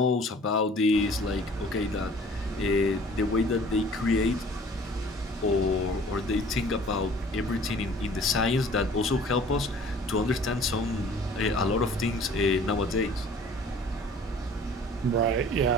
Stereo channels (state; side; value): normal; both; correlation 0.50